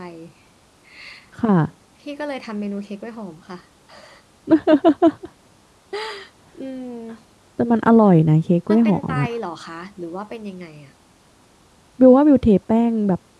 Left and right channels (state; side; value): identical; both; correlation 1.00